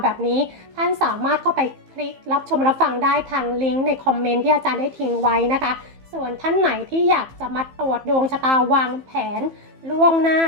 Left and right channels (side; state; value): left; late; 15 ms